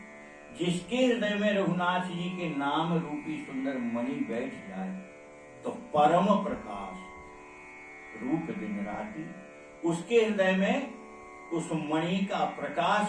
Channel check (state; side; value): identical; both; correlation 1.00